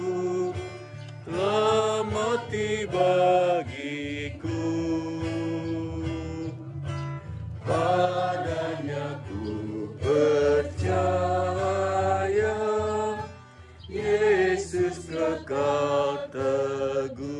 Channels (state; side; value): identical; both; correlation 1.00